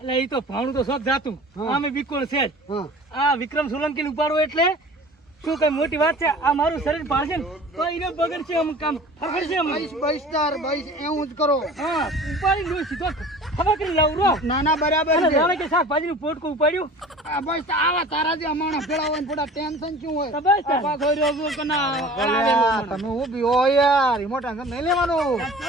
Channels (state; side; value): normal; both; correlation 0.43